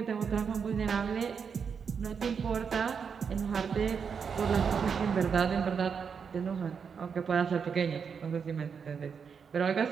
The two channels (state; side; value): quieter; left; 6.4 dB